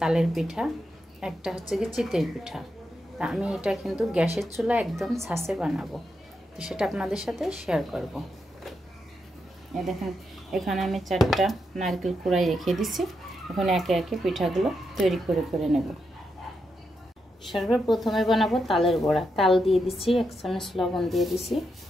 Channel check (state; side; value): normal; both; correlation 0.84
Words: পিঠা, একটা হচ্ছে গিয়ে চিতই পিঠা। তা আমি এটা কিন্তু গ্যাসের চুলা একদম ছাঁচে বানাবো, তো সেটা আপনাদের সাথে শেয়ার করব। এই দেখেন, এখানে আমি 4টা নারকেল কুড়াই রেখে দিছি। এখন একে একে পিঠাগুলো তৈরি করে নেব। সর্বপ্রথমে বানাবো তালের বড়া। তাল দিয়ে দিচ্ছি, 1 চামচ লবণ দিয়ে দিছি,